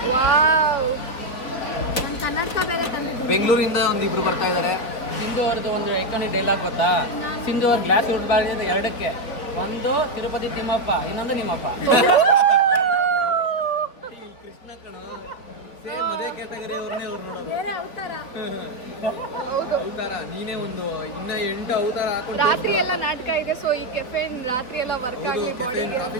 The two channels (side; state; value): right; late; 3.8 ms